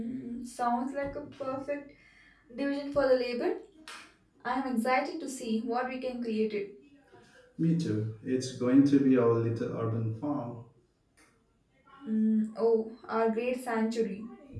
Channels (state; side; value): identical; both; correlation 1.00